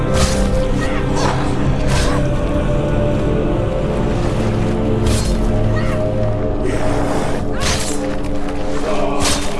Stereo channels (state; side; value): identical; both; correlation 1.00